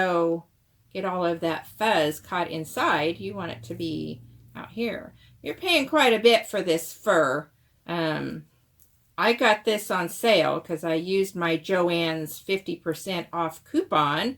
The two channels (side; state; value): both; identical; correlation 1.00